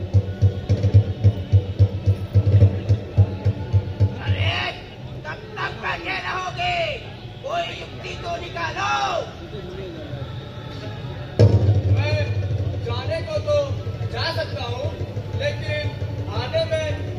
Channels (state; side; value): identical; both; correlation 1.00